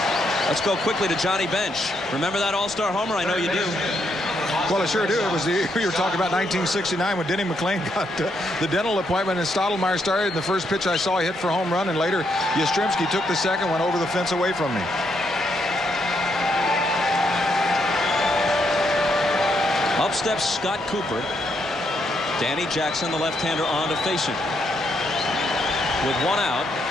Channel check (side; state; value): both; normal; correlation 0.77